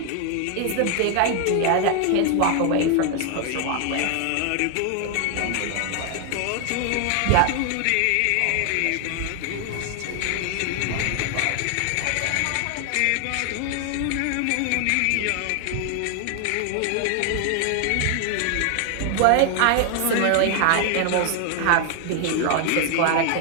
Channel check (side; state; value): both; different; correlation 0.00